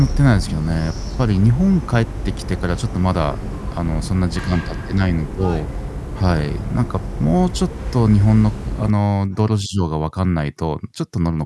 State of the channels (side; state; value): both; identical; correlation 1.00